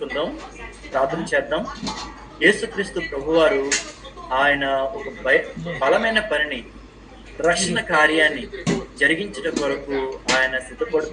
ప్రార్థన చేద్దాం. యేసుక్రీస్తు ప్రభువారు ఆయన ఒక బలమైన పనిని, రక్షణ కార్యాన్ని జరిగించడం కొరకు ఆయన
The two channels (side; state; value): both; identical; correlation 1.00